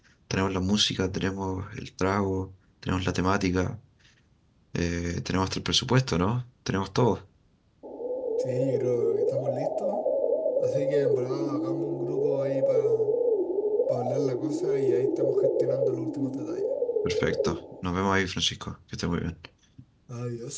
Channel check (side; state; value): both; identical; correlation 1.00